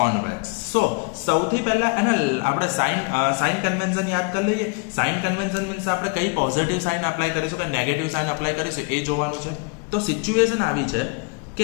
So સૌથી પહેલાં એને આપણે સાઇન કન્વેન્શન યાદ કરી લઈએ. સાઇન કન્વેન્શન મીન્સ આપણે કઈ પોઝિટિવ સાઇન અપ્લાય કરીશું કે નેગેટિવ સાઇન અપ્લાય કરીશું એ જોવાનું છે. તો સિચ્યુએશન આવી છે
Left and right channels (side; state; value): right; quieter; 32.6 dB